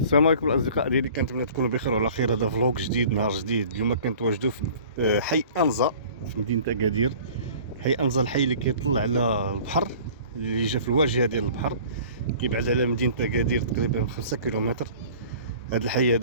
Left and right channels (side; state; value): both; inverted; correlation -0.46